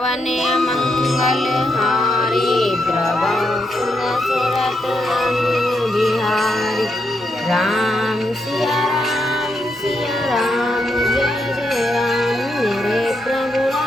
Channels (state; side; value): normal; both; correlation 0.81